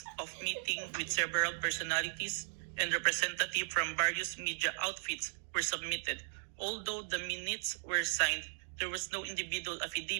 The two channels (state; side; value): silent; left; digital silence